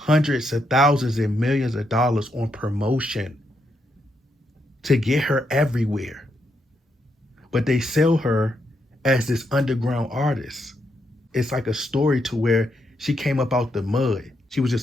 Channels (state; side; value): normal; both; correlation 0.80